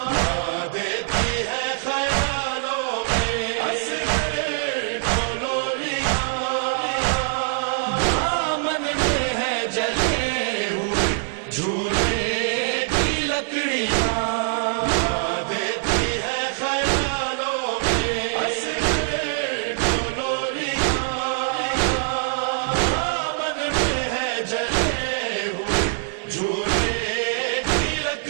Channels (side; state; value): left; silent; 63 dB below the other